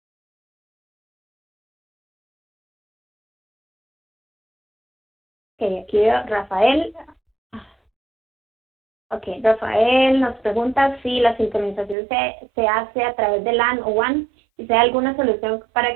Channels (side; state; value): left; drops out; at 12.0 s